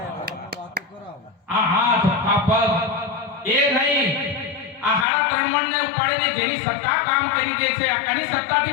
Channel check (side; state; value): right; drops out; at 5.1 s